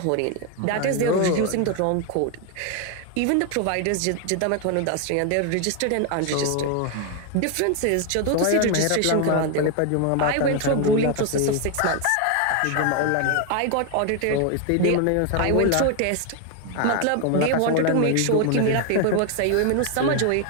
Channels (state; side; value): different; both; correlation 0.01